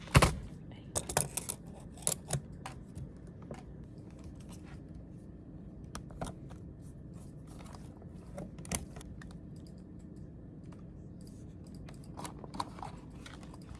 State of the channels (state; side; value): identical; both; correlation 1.00